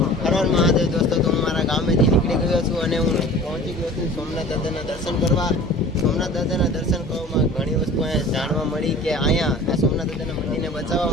હર હર મહાદેવ દોસ્તો, તો હું મારા ગામેથી નીકળી ગયો છું અને હું પહોંચી ગયો છું સોમનાથ દાદાના દર્શન કરવા. સોમનાથ દાદાના દર્શન કરવામાં ઘણી વસ્તુ અહીંયા જાણવા મળી કે અહીંયા આ સોમનાથ દાદાના મંદિરને બચાવવા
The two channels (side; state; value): both; normal; correlation 0.43